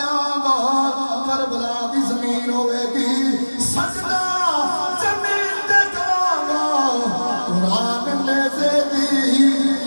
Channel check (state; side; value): inverted; both; correlation -1.00